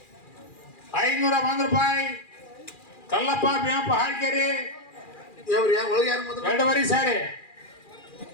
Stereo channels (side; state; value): right; late; 2.4 ms